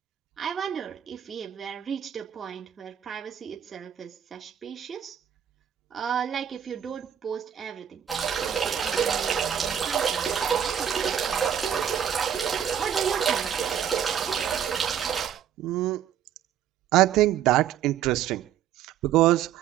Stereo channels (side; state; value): left; quieter; 9.4 dB